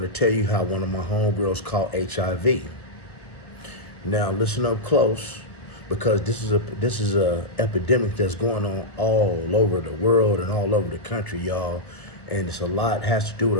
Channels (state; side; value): late; right; 1.0 ms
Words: tell you how one of my homegirls caught HIV. Now listen up close, because this is a epidemic that's going on all over the world and all over the country, y'all. And it's has to do